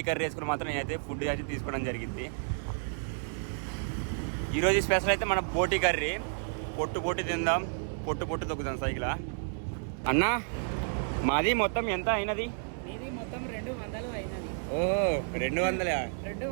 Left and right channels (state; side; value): silent; left; 57 dB below the other